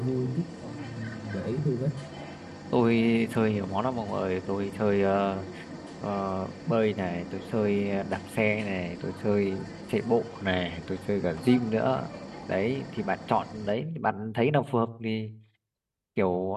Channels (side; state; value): both; identical; correlation 1.00